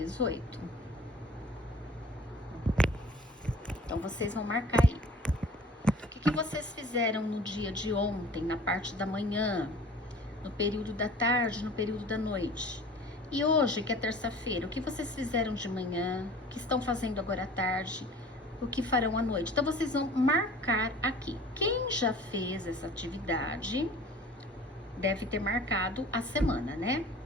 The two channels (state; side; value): normal; both; correlation 0.45